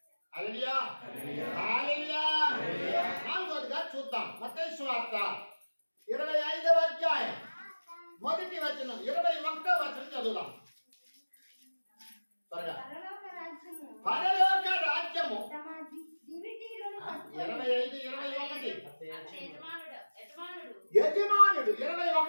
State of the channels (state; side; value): inverted; both; correlation -1.00